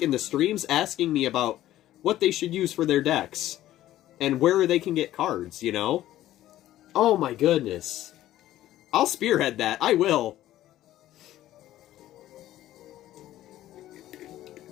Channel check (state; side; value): quieter; right; 13.9 dB